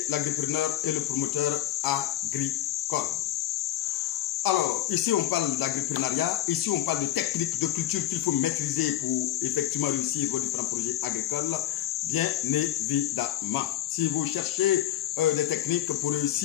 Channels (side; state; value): right; quieter; 13.1 dB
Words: l'agripreneur et le promoteur agricole. Alors, ici on parle d'agripreneuriat, ici on parle de techniques de culture qu'il faut maîtriser pour effectivement réussir vos différents projets agricoles, bien évidemment. Si vous cherchez des techniques pour